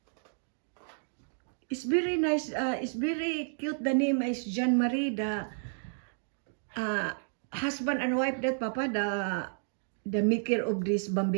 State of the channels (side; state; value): left; silent; digital silence